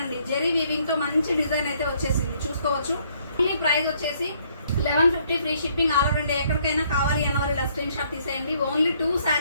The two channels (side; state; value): both; inverted; correlation -0.67